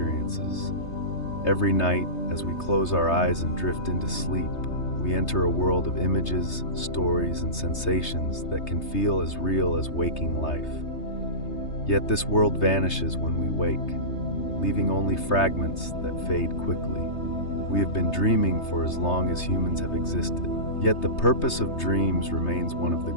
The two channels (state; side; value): late; right; 3.3 ms